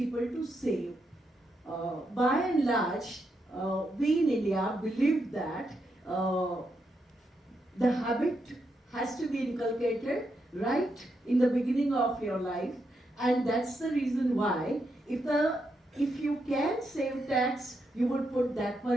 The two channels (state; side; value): normal; both; correlation 0.82